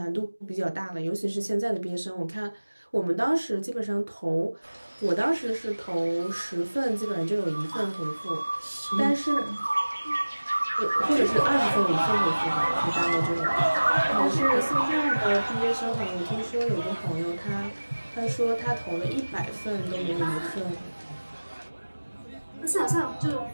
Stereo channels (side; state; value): both; inverted; correlation -1.00